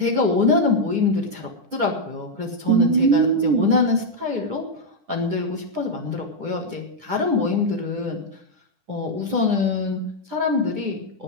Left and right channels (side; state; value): left; late; 10 ms